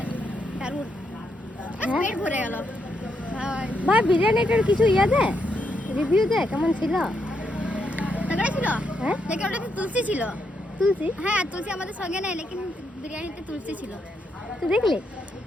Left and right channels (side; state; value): both; normal; correlation 0.79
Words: দারুণ, হ্যাঁ? পেট ভরে গেল ভাই বিরিয়ানিটার কিছু দে, রিভিউ দে কেমন ছিল? তগড়া ছিল। হ্যাঁ দেখে ওটাতে তুলসী ছিল। তুলসী? হ্যাঁ তুলসী আমাদের সঙ্গে নেই, লেকিন বিরিয়ানিতে তুলসী ছিল। তুই দেখলি?